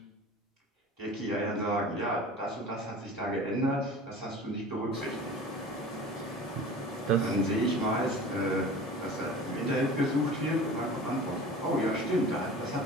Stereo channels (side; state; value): both; normal; correlation 0.39